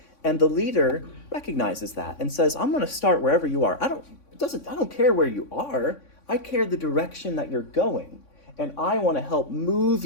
And the leader recognizes that and says, I'm going to start wherever you are. I don't care where you are. I care the direction that you're going. And I want to help move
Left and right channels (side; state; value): right; late; 3.6 ms